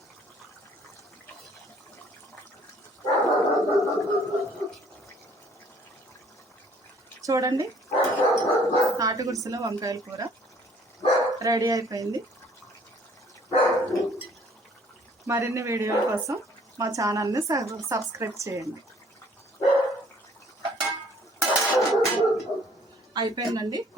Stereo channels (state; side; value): normal; both; correlation 0.58